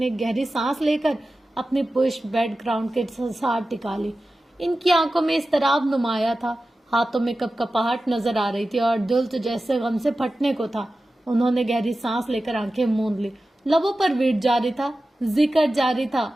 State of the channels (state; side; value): normal; both; correlation 0.94